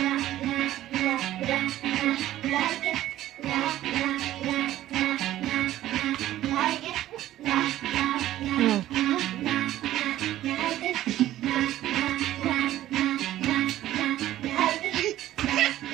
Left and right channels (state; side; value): quieter; left; 13.8 dB